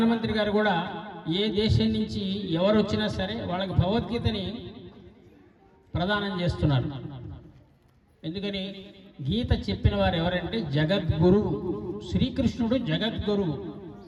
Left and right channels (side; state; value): both; identical; correlation 1.00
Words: గారు కూడా ఏ దేశం నుంచి ఎవరు వచ్చినా సరే వాళ్ళకి భగవద్గీతని ప్రదానం చేస్తున్నారు. ఎందుకని గీత చెప్పిన వారు ఎవరంటే జగద్గురువు శ్రీకృష్ణుడు, జగద్గురువు.